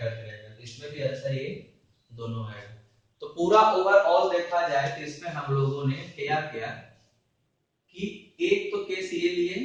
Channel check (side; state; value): both; identical; correlation 1.00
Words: रहेगा। तो इसमें भी ऐसा ही दोनों आएगा। तो पूरा ओवरऑल देखा जाए तो इसमें हम लोगों ने क्या किया कि एक तो केस ये लिए